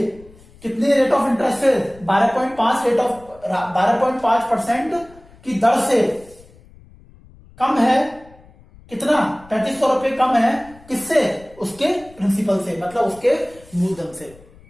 कितने रेट ऑफ इंटरेस्ट है, 12.5% की दर से कम है, कितना, 3500 रुपए कम है, किससे, उसके प्रिंसिपल से, मतलब उसके मूलधन से,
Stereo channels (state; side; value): noise; left; rumble, 25 dB below the sound